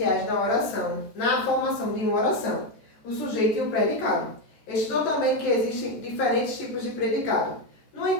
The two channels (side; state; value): right; late; 14 ms